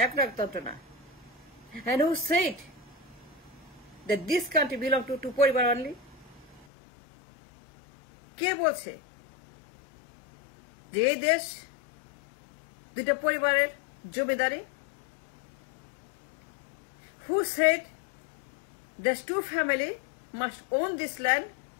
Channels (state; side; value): drops out; right; at 6.7 s